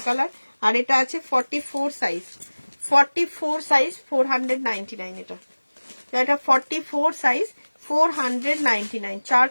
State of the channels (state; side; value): inverted; both; correlation -1.00